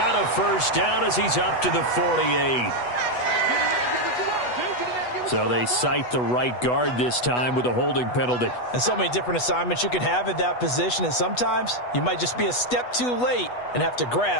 a first down as he's up to the 48. So they cite the right guard this time with a holding penalty. And so many different assignments you could have at that position, and sometimes you might just be a step too late and have to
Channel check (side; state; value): right; late; 8.1 ms